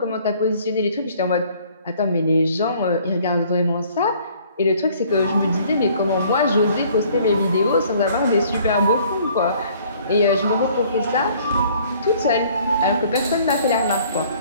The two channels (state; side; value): inverted; both; correlation -0.57